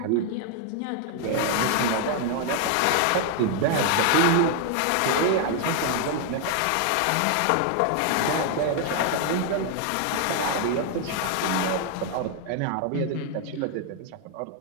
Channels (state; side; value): different; both; correlation 0.00